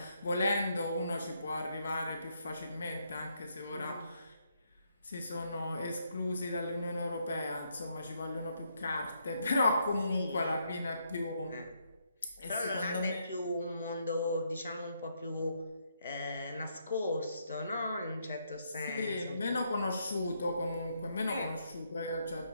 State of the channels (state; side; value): inverted; both; correlation -0.76